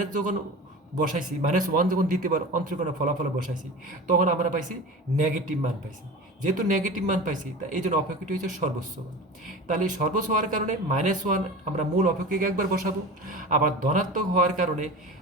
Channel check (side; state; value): both; normal; correlation 0.33